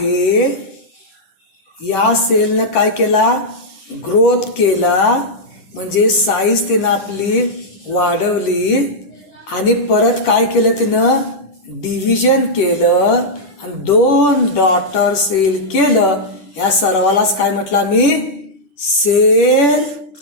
या सेलनं काय केला, ग्रोथ केला, म्हणजे साईज तिनं आपली वाढवली आणि परत काय केलं तिनं, डिव्हिजन केलं आणि 2 डॉटर सेल केलं. या सर्वालाच काय म्हटलं मी, सेल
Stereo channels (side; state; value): right; late; 10 ms